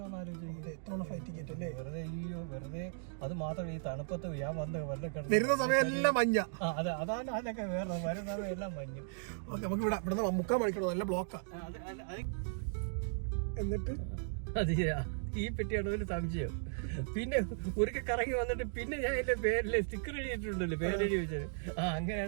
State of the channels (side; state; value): left; silent; digital silence